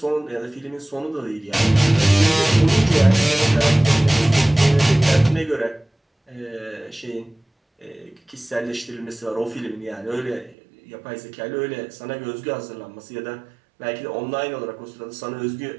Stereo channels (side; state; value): left; drops out; at 10.6 s